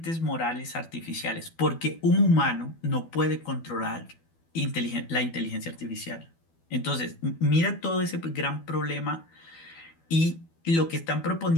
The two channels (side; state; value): right; late; 12 ms